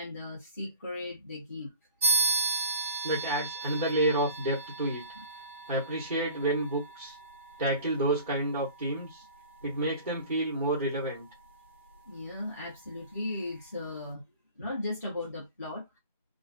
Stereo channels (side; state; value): both; inverted; correlation -0.42